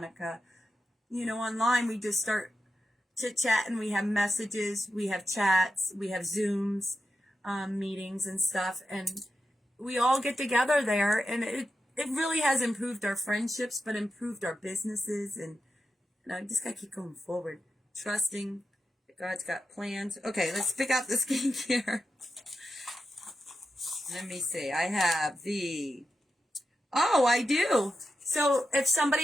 online we just start chit-chatting. We have messages, we have chats, we have Zooms, meetings and stuff, and we all get together there, and it really has improved our friendships, but improved our businesses, and I just gotta keep going forward, trusting that God's got plans. Okay, let's pick out the skincare. Let me see. I have I do. So if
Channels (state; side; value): normal; both; correlation 0.89